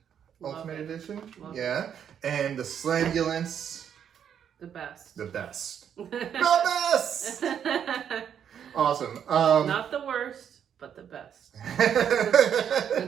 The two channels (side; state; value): left; quieter; 8.6 dB